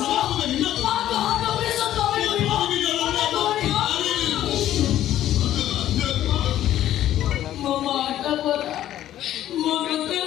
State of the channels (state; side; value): quieter; right; 12.5 dB